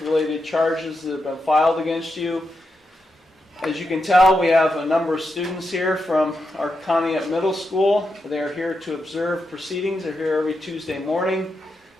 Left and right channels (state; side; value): normal; both; correlation 0.86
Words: charges that have been filed against you. As you can tell, we have a number of students here from our Conneaut Middle School. They're here to observe proceedings. They're here every Tuesday morning